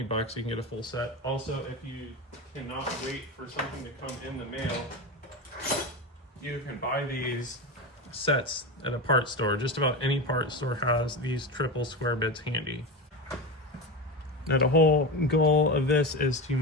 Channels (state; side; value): normal; both; correlation 0.21